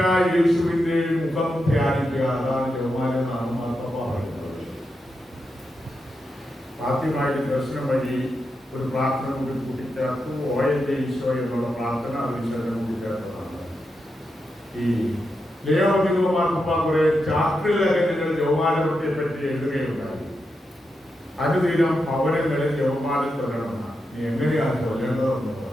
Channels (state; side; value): normal; both; correlation 0.87